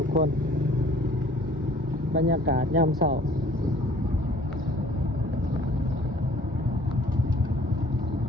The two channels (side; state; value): both; normal; correlation 0.54